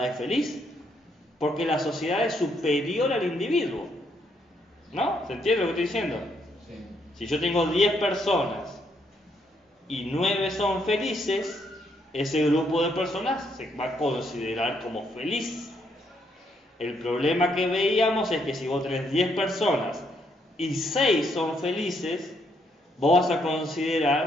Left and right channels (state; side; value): normal; both; correlation 0.73